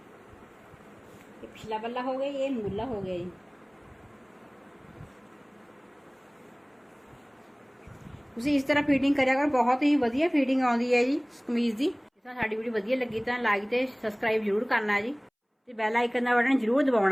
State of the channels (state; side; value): identical; both; correlation 1.00